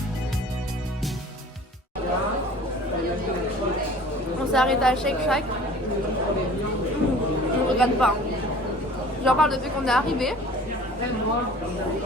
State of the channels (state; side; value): normal; both; correlation 0.46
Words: On s'est arrêté à Shake Shack. Je ne regrette pas. J'en parle depuis qu'on est arrivé.